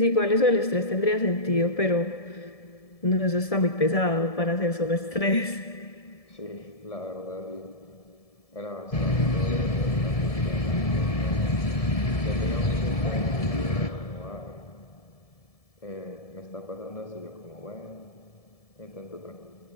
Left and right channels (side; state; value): right; late; 1.7 ms